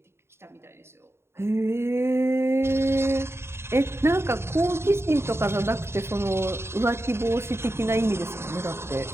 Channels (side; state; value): left; late; 0.12 ms